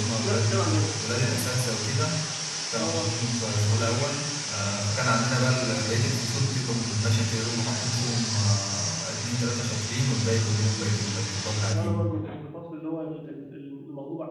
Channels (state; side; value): identical; both; correlation 1.00